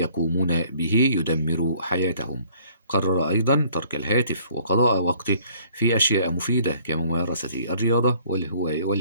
به يدمر حياتهم. قرر أيضا ترك الهاتف وقضاء وقته في أشياء مفيدة كممارسة الرياضة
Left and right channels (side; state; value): both; inverted; correlation -0.58